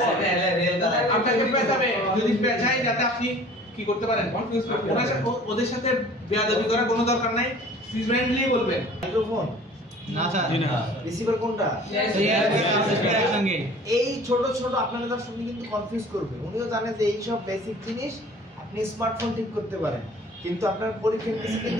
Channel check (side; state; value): both; normal; correlation 0.47